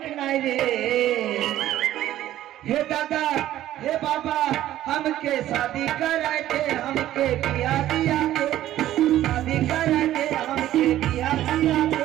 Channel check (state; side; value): quieter; left; 13.3 dB